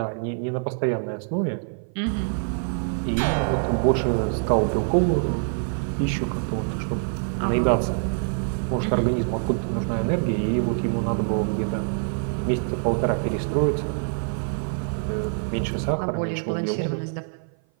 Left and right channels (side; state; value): left; silent; 56 dB below the other